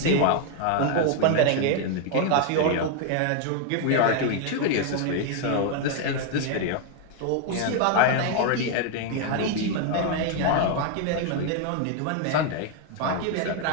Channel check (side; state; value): both; different; correlation 0.00